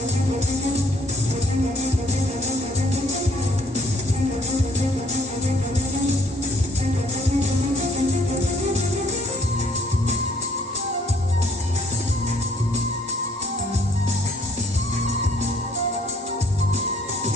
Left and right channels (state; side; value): normal; both; correlation 0.60